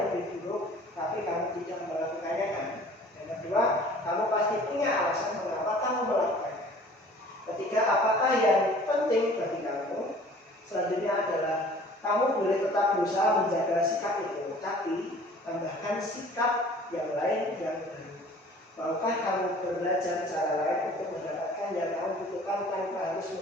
lebih buruk, tapi kamu tidak melakukannya kan. Yang kedua, kamu pasti punya alasan mengapa kamu melakukannya. Ketiga, apakah yang penting bagi kamu? Selanjutnya adalah kamu boleh tetap berusaha menjaga sikap itu, tapi tambahkan sikap yang lain yang baru. Maukah kamu belajar cara lain untuk mendapatkan yang kamu butuhkan tanpa harus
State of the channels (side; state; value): both; normal; correlation 0.49